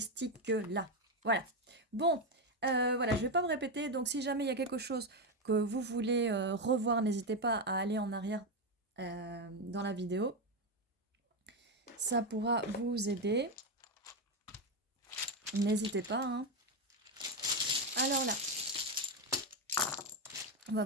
Voilà. Bon, voilà, je ne vais pas me répéter. Donc, si jamais il y a quelque chose que vous voulez revoir, n'hésitez pas à aller en arrière dans la vidéo. Ça pourra vous aider. N'hésitez pas. Hein. Alors là, on va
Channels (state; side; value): normal; both; correlation 0.09